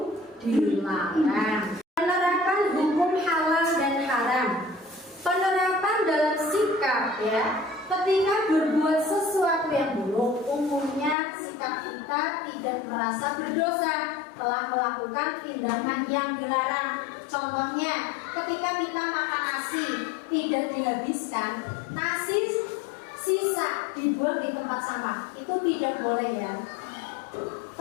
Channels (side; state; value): right; drops out; at 11.2 s